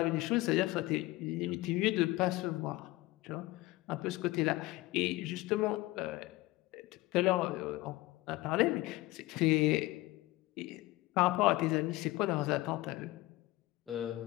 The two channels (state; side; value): quieter; right; 19.4 dB